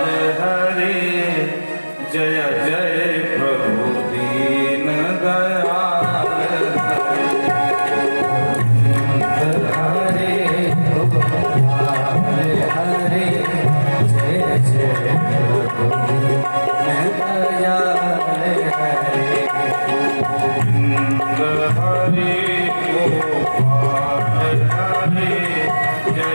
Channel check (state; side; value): inverted; both; correlation -1.00